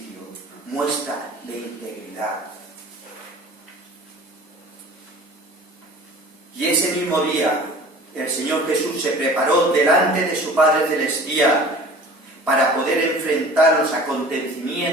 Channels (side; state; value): both; normal; correlation 0.43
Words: muestra de integridad. Y ese mismo día, el Señor Jesús se preparó delante de su Padre Celestial para poder enfrentar los